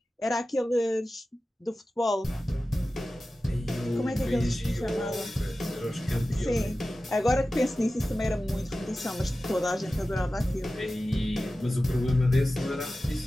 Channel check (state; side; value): normal; both; correlation 0.95